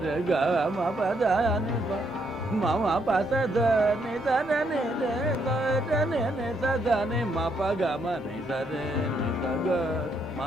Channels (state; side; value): normal; both; correlation 0.74